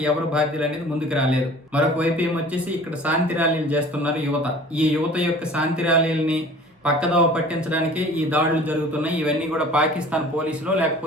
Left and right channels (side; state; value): both; normal; correlation 0.46